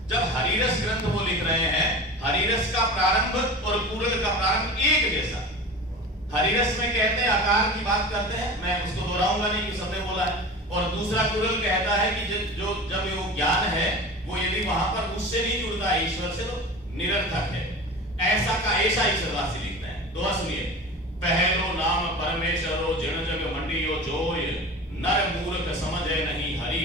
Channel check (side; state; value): both; normal; correlation 0.34